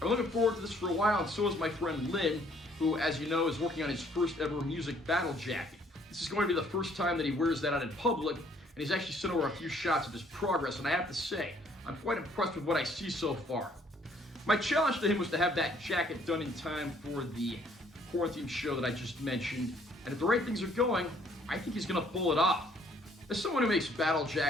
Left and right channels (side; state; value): both; normal; correlation 0.63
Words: looking forward to this for a while, and so is my friend Lynn, who, as you know, is working on his first ever music battle jacket. This is going to be the first time that he wears that out in public, and he's actually sent over a few shots of his progress, and I have to say, I'm quite impressed with what I see so far. My challenge to him was to have that jacket done in time for the quarantine show that I just mentioned, and if the right things are going, I think he's going to pull it off. As someone who makes battle